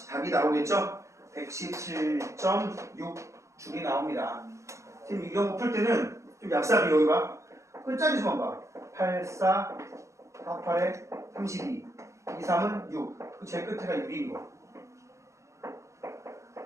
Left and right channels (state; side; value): late; left; 0.14 ms